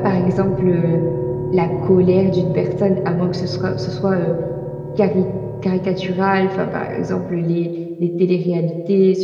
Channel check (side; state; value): both; identical; correlation 1.00